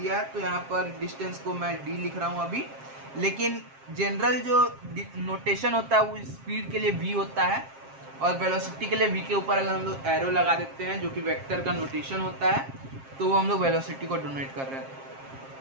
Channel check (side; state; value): left; late; 7.5 ms